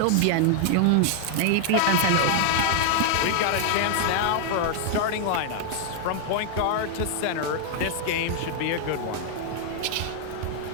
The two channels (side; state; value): both; different; correlation 0.00